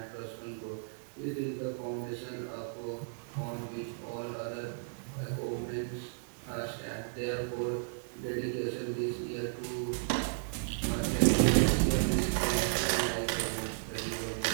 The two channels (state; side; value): silent; left; 55 dB below the other